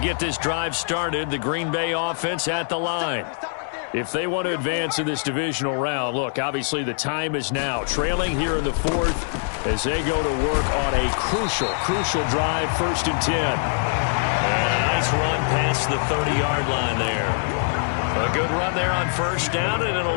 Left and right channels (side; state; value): right; silent; digital silence